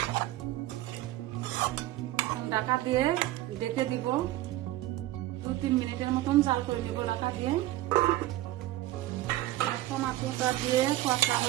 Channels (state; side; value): quieter; left; 15.7 dB